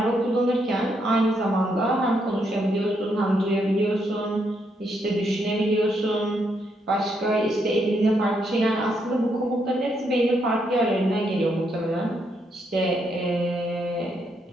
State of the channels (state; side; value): normal; both; correlation 0.77